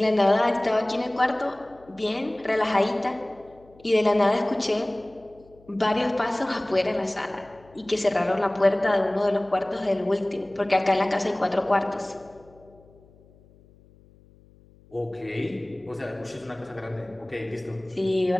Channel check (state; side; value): noise; left; hum, 27 dB below the sound